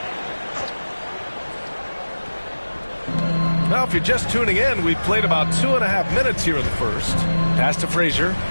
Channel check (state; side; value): inverted; both; correlation -1.00